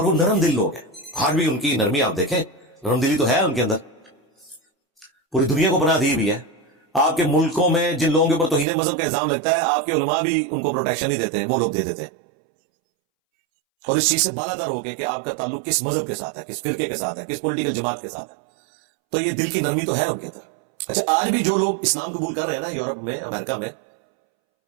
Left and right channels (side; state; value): left; drops out; at 8.7 s